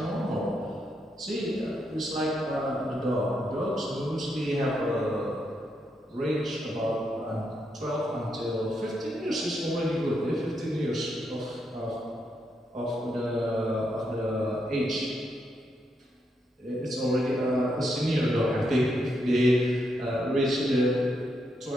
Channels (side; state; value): both; normal; correlation 0.80